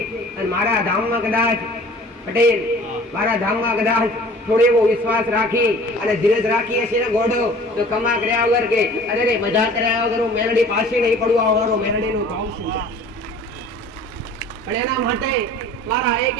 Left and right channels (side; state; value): both; normal; correlation 0.47